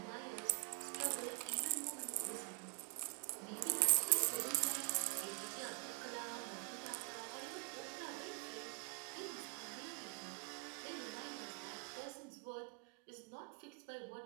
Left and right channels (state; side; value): quieter; left; 37.4 dB